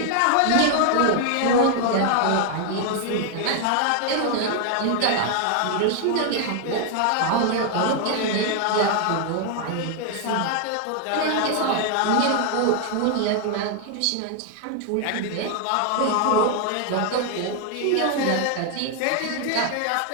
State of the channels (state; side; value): different; both; correlation 0.00